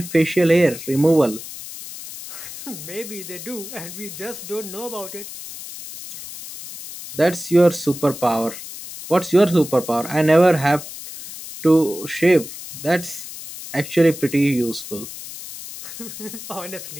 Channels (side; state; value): left; noise; hiss, 12 dB below the sound